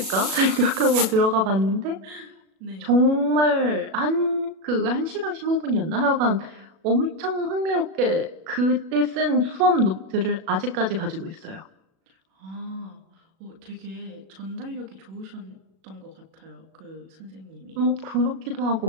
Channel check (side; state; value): left; late; 37 ms